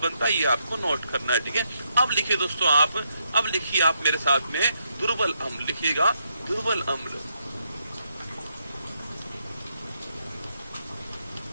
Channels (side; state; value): both; inverted; correlation -0.79